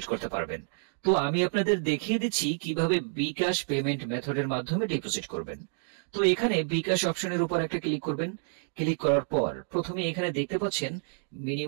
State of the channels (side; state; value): left; silent; digital silence